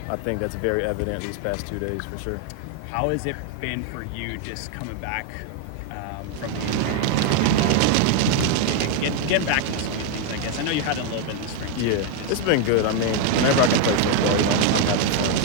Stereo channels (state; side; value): different; both; correlation 0.01